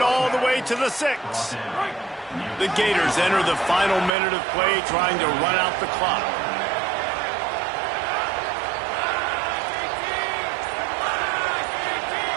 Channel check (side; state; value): left; drops out; at 4.1 s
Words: all the way to the 6. The Gators enter the final minute of play, trying to run out the clock.